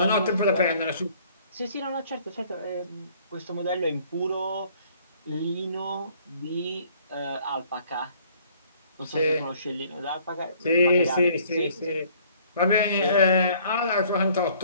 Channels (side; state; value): both; inverted; correlation -0.58